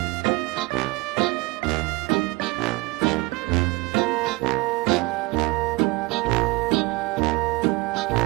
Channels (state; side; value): quieter; left; 23.9 dB